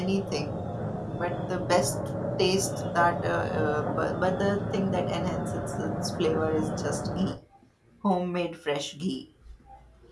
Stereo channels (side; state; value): both; identical; correlation 1.00